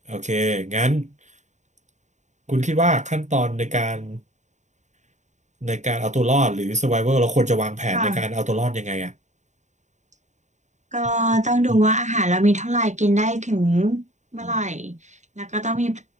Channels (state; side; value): late; left; 0.34 ms